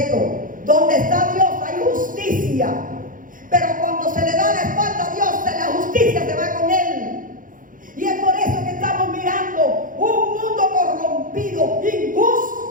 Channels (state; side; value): late; left; 0.39 ms